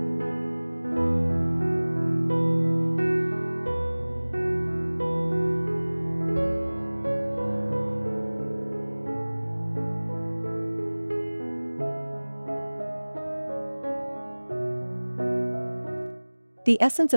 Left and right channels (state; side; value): inverted; both; correlation -1.00